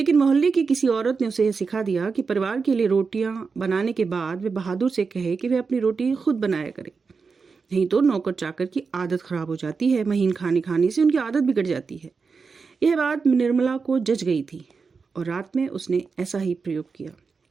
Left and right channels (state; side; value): quieter; left; 5.0 dB